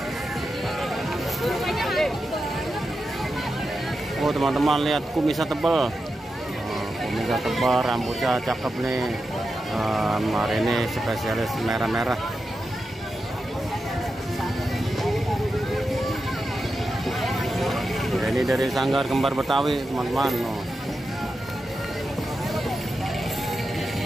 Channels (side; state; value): both; normal; correlation 0.89